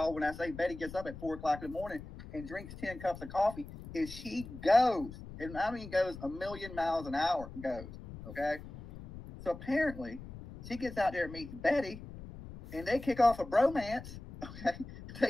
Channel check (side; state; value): left; noise; rumble, 13 dB below the sound